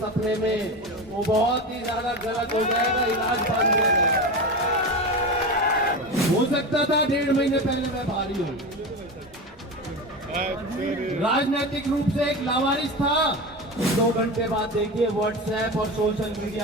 में, वो बहुत ही ज्यादा गलत हो जाएगा, इलाज बंद हो जाएगा। हो सकता था 1.5 महीने पहले मैं भारी हूँ, राजनीतिक रूप से एक लावारिस था। 2 घंटे बाद देखिए व्हाट्सएप और सोशल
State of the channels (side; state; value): both; normal; correlation 0.24